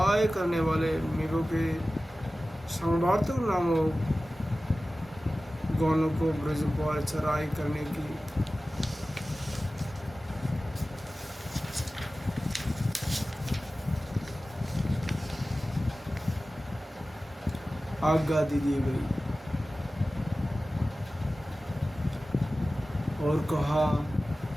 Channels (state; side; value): normal; both; correlation 0.96